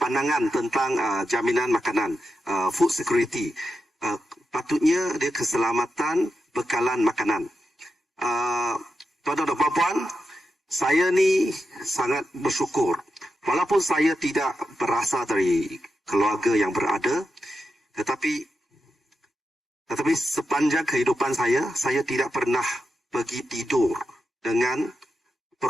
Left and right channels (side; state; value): both; normal; correlation 0.89